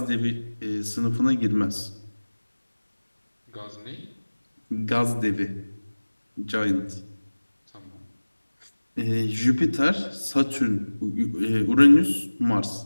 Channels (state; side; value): inverted; both; correlation -1.00